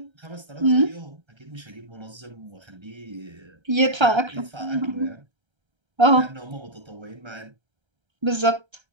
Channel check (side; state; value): left; late; 1.3 ms